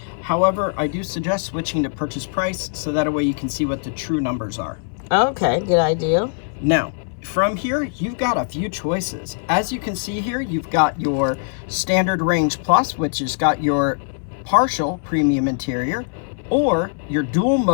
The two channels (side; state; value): right; silent; 62 dB below the other